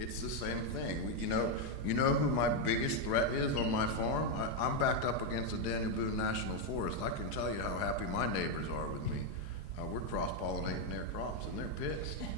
the same thing. You know who my biggest threat is on my farm? I'm backed up against the Daniel Boone National Forest. I can tell you how happy my neighbors are with me. We're cross-pollinating their crops, and they're pissed.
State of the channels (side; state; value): left; late; 4.8 ms